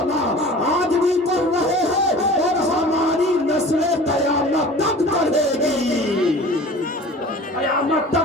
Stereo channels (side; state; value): both; normal; correlation 0.42